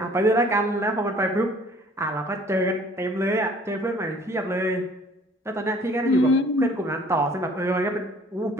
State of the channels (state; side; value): normal; both; correlation 0.54